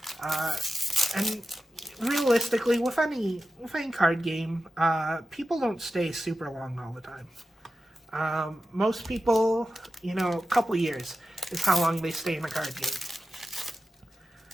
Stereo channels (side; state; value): both; normal; correlation 0.92